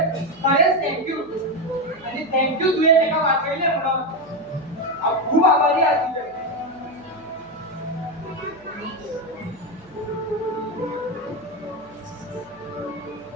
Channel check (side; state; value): right; noise; hum, 27 dB below the sound